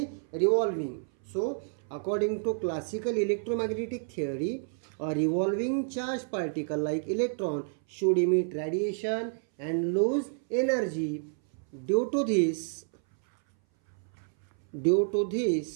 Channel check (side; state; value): left; silent; 58 dB below the other